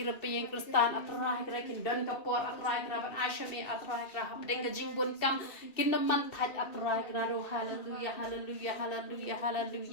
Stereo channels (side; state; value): right; late; 2.6 ms